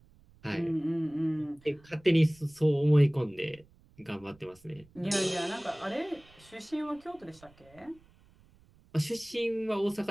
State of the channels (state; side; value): noise; right; rumble, 28 dB below the sound